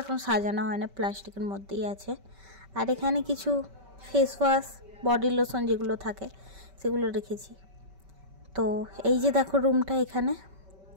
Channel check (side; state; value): left; late; 5.2 ms